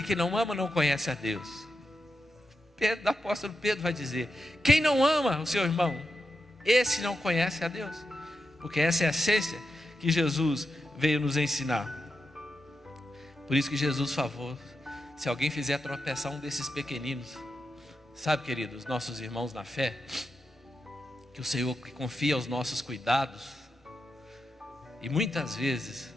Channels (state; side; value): normal; both; correlation 0.88